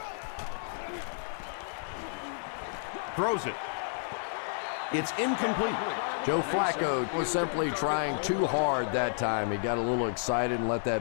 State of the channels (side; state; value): right; silent; digital silence